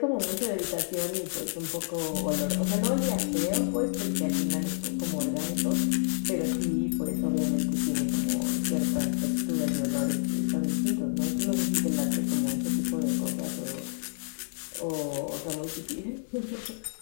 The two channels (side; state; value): right; silent; 59 dB below the other